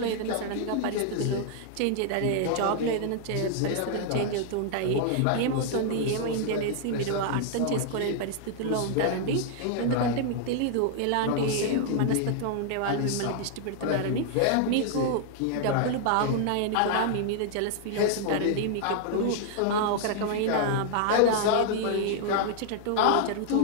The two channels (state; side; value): different; both; correlation 0.00